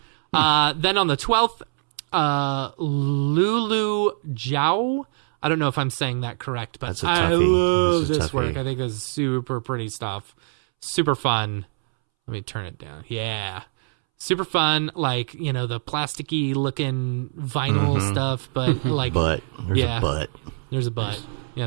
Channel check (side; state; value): left; silent; 63 dB below the other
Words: Then on the 12th, Lulu Zhao. I don't know if I'm saying that correct, but I love this work. I think this is super pretty stuff. Super fun. Let me turn it down. Yeah. Super fun, the plasticky looking vinyl stuff, but There's a butt. There's a butt,